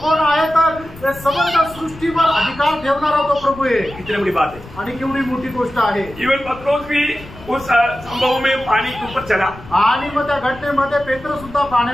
आहे, तर समग्र सृष्टीवर अधिकार ठेवणारा तो प्रभू आहे। कितनी बड़ी बात है आणि केवढी मोठी गोष्ट आहे। इवन पत्रोस भी उस संभव में पानी के ऊपर चला। आणि मग त्या घटनेमध्ये पेत्र सुद्धा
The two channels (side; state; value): left; noise; rumble, 18 dB below the sound